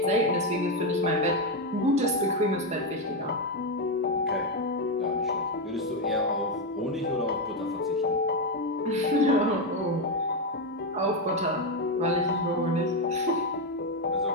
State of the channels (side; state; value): both; normal; correlation 0.07